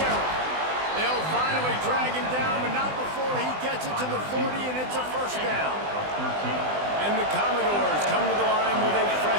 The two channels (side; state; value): left; late; 20 ms